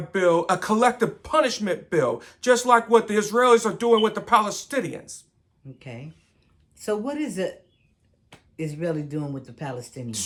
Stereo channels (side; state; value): both; identical; correlation 1.00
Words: bill, a collective punishment bill, just like what the Israelis are doing with the Palestinians. Okay. So what is it Israeli doing with the Palestinians?